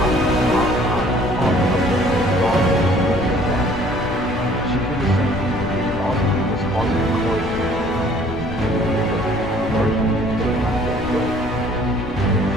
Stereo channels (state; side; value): noise; left; rumble, 11 dB below the sound